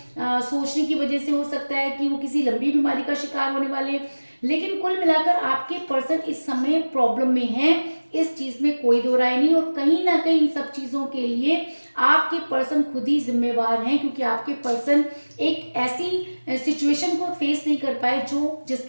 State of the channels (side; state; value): both; inverted; correlation -1.00